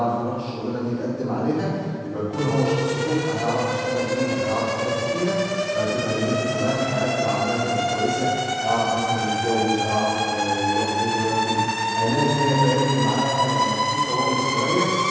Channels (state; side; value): identical; both; correlation 1.00